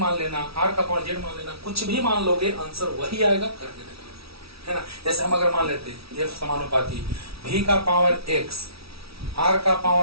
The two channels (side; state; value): left; late; 0.76 ms